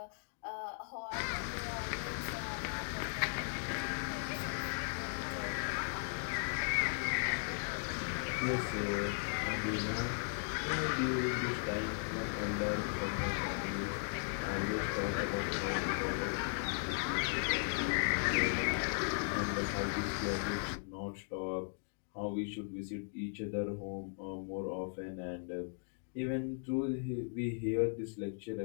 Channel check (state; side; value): silent; right; digital silence